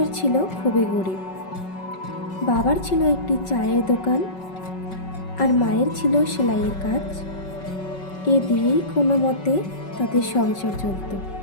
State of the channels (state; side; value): late; right; 5.3 ms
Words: ছিল খুবই গরিব। বাবার ছিল একটি চায়ের দোকান আর মায়ের ছিল সেলাইয়ের কাজ। এ দিয়েই কোনো মতে তাদের সংসার চলত।